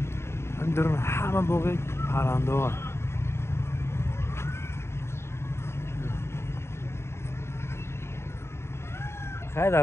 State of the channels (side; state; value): right; late; 0.12 ms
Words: درون همه باقی پرنده ها. خیلی